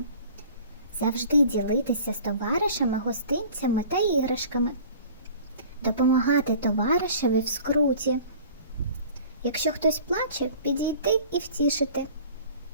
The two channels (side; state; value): both; inverted; correlation -0.46